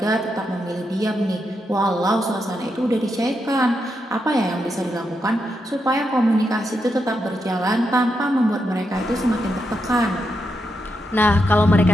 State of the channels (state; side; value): normal; both; correlation 0.84